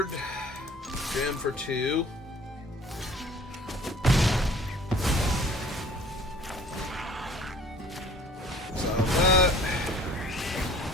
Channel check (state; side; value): normal; both; correlation 0.50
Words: Jam for 2. So that.